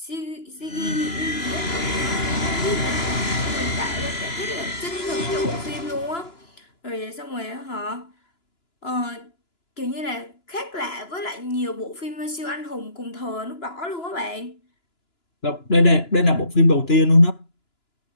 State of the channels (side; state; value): right; late; 2.9 ms